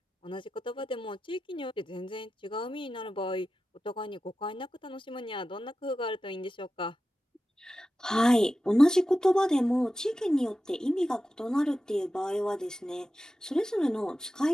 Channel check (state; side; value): normal; both; correlation 0.93